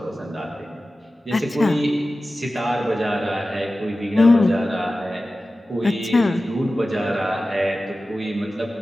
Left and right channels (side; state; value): both; normal; correlation 0.95